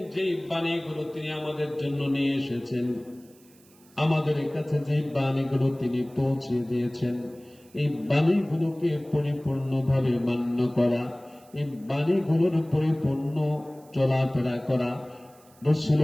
যে বাণীগুলো তিনি আমাদের জন্য নিয়ে এসেছেন, আমাদের কাছে যে বাণীগুলো তিনি পৌঁছে দিয়েছেন, এই বাণীগুলোকে পরিপূর্ণভাবে মান্য করা, এই বাণীগুলোর পরিপূর্ণ চলাফেরা করা,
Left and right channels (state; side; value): noise; right; hiss, 28 dB below the sound